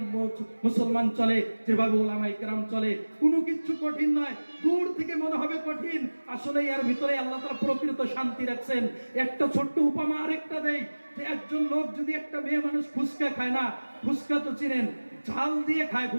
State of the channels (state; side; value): inverted; both; correlation -1.00